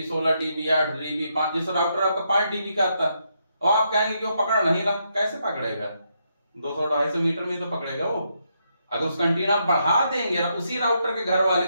16 dB, 8 dB, 5, जैसे राउटर आपका 5 dB का आता है, और आप कहेंगे कि वो पकड़ नहीं रहा, कैसे पकड़ेगा? 200-250 मीटर में तो पकड़ेगा वो। अगर उसका एंटीना बढ़ा देंगे उसी राउटर के घर वाले,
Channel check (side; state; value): both; inverted; correlation -0.79